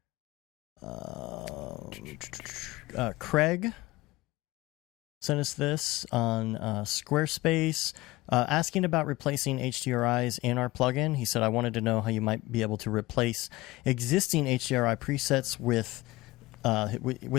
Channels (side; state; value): right; quieter; 19.3 dB